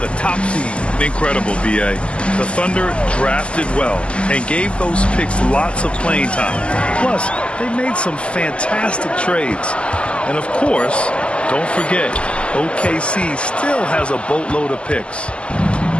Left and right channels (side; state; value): right; late; 0.054 ms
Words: top seed. Incredible, B.A. The Thunder drafted well and gave those picks lots of playing time. Plus, they made some fantastic trades. And of course, don't forget, OKC still has a boatload of picks.